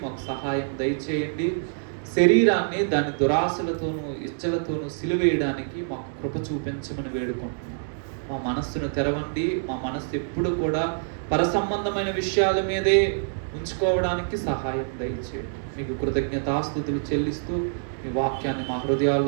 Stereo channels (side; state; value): left; silent; digital silence